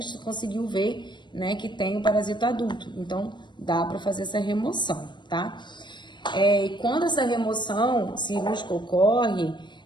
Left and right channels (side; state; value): right; late; 0.22 ms